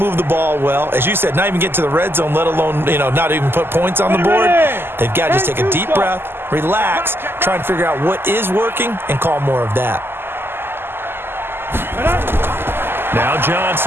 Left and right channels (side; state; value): left; late; 0.11 ms